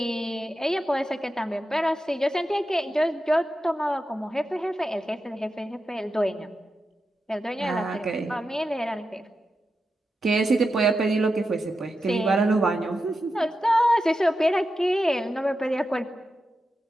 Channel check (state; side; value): normal; both; correlation 0.89